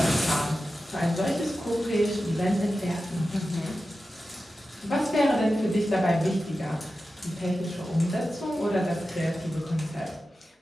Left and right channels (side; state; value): both; normal; correlation 0.93